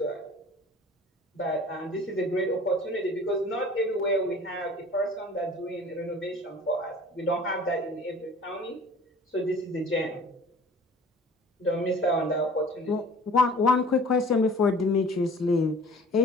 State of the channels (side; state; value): both; normal; correlation 0.46